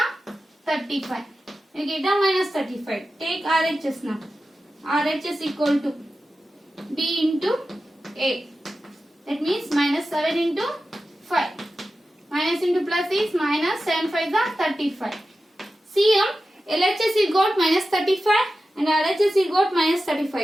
35. You get a minus 35. Take RHS now. RHS equal to B into A. That means minus 7 into 5. Minus into plus is minus. 7 5s are 35. See here, LHS you got minus 35 and RHS you got minus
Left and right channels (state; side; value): normal; both; correlation 0.93